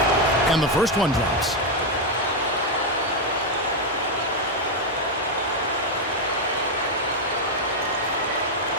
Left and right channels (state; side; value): normal; both; correlation 0.03